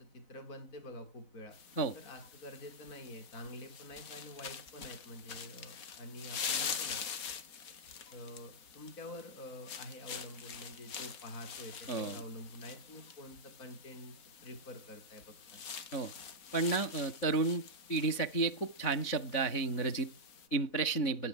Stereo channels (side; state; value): right; late; 4.0 ms